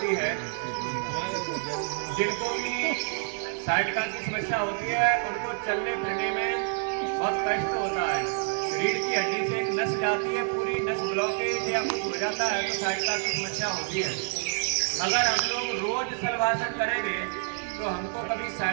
है, जिनको भी साइटिका की समस्या होती है उनको चलने फिरने में बहुत कष्ट होता है। रीढ़ की हड्डी से एक नस जाती है, पूरी नस ब्लॉकेज या कुछ हो जाता है तो साइटिका की समस्या होती है। अगर हम लोग रोज शलभासन करेंगे तो हमको कभी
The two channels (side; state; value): left; silent; 59 dB below the other